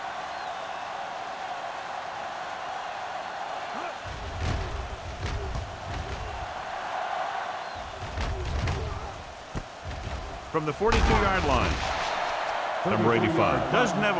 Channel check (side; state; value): both; identical; correlation 1.00